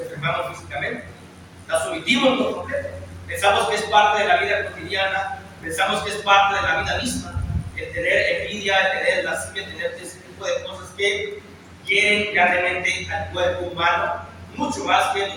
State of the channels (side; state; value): both; identical; correlation 1.00